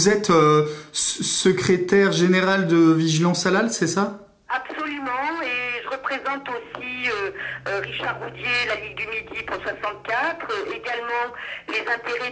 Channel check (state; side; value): identical; both; correlation 1.00